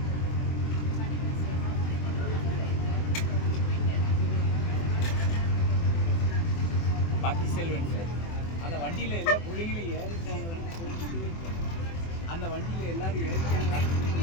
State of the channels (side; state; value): right; late; 24 ms